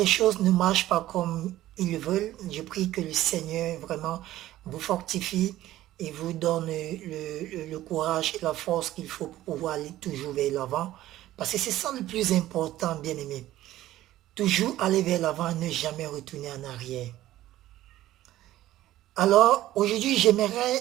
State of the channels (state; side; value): quieter; left; 14.6 dB